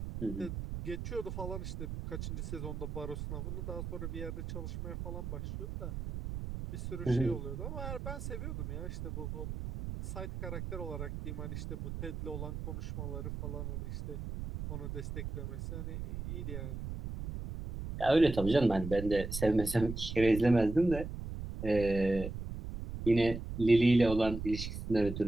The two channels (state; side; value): noise; right; rumble, 6 dB below the sound